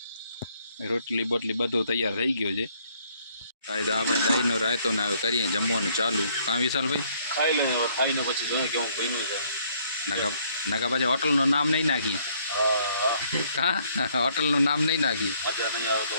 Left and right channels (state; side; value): inverted; both; correlation -0.65